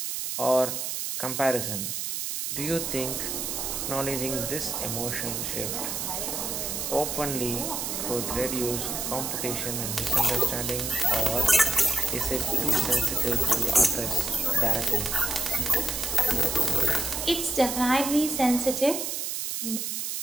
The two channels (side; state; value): right; noise; hiss, 3 dB below the sound